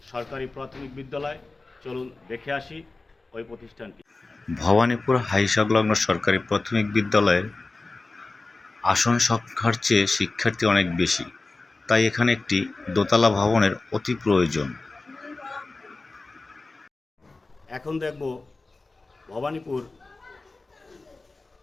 সরকারি প্রাথমিক বিদ্যালয়। চলুন দেখে আসি ওই প্রতিষ্ঠানটি। ভবানীপুর হাই সংলগ্ন সরকারি প্রাথমিক বিদ্যালয়ের আসন সংখ্যার চেয়ে শিক্ষার্থী অনেক বেশি, তাই এখানে একটি দোতলা ভবনের অতি প্রয়োজন। এখন দেখব ভবানীপুর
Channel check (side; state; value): right; quieter; 3.4 dB